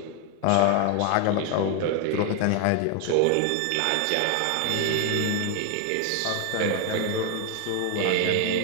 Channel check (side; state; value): both; different; correlation 0.01